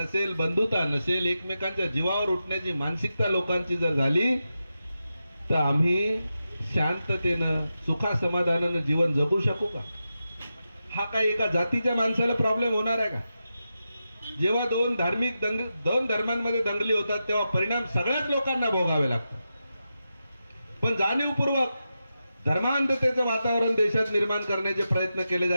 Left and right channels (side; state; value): both; inverted; correlation -0.90